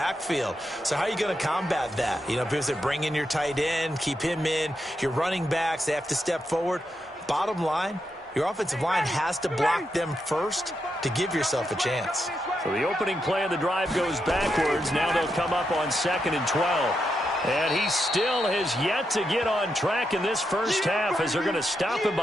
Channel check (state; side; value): normal; both; correlation 0.84